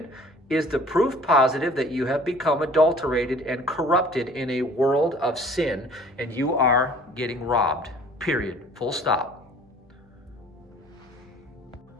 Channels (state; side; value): normal; both; correlation 0.51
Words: is the proof positive that you have become adulterated and corrupted in a world of sin, and you are getting robbed. Period. Full stop.